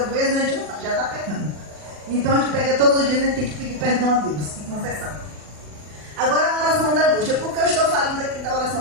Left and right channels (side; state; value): left; late; 40 ms